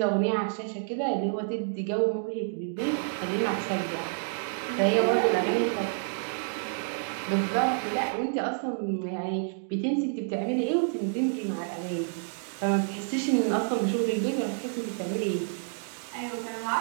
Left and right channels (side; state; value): left; silent; digital silence